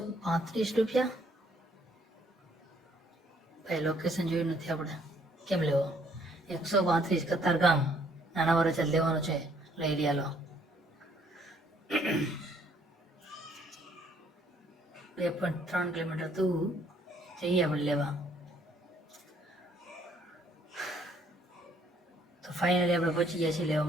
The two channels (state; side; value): normal; both; correlation 0.65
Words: રૂપિયા. ભાઈ લોકેશન જોયું નથી આપણે, કેમ લેવો? 135 કતારગામ નાના વરાછા લેવાનો છે. લઈ રહ્યા લો. 2.3 કિલોમીટર દૂર જઈએ આપણે લેવા. તો ફાઇનલી આપણે પહોંચી ગયા છીએ લેવા